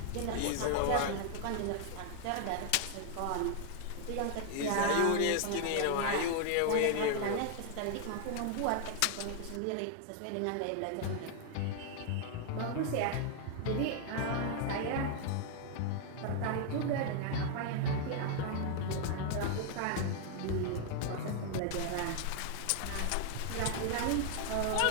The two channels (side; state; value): both; different; correlation 0.00